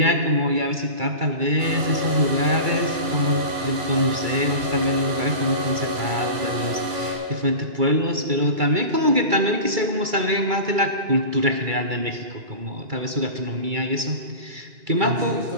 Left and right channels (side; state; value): left; late; 2.3 ms